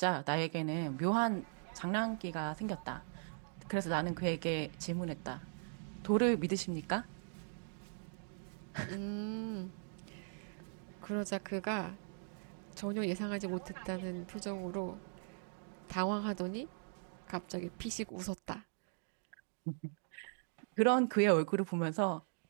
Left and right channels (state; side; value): silent; left; digital silence